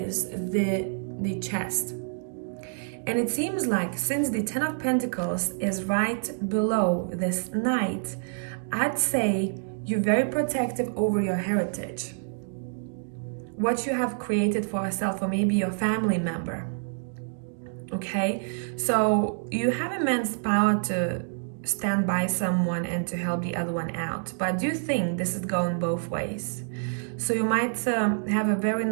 the chest. And it seems like since the 10 of Pentacles is right below this Knight, I'd say you're very protective over your heritage, what you have created for yourself, or maybe your family member. Okay, so you have immense power to stand by someone and to help the other one out, but I do think this is going both ways. So you might have a very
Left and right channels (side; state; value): left; silent; digital silence